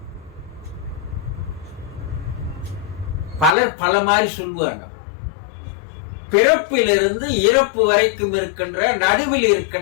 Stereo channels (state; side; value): drops out; right; at 3.6 s